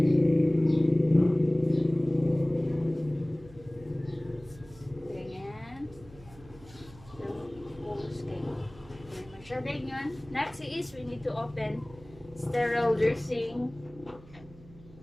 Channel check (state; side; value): noise; right; hum, 21 dB below the sound